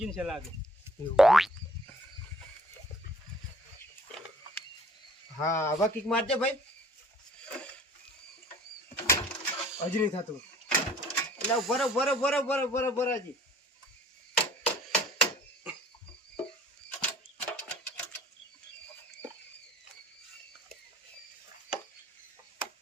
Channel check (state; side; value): normal; both; correlation 0.54